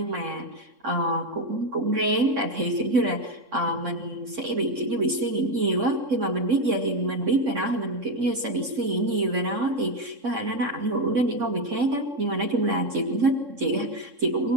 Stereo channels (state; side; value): late; left; 3.6 ms